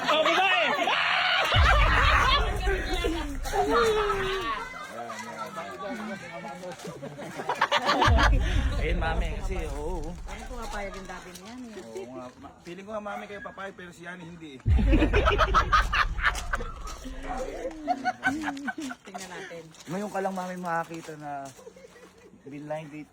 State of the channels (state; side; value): identical; both; correlation 1.00